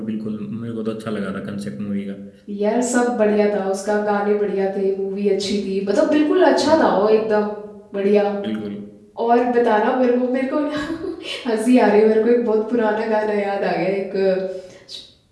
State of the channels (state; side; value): identical; both; correlation 1.00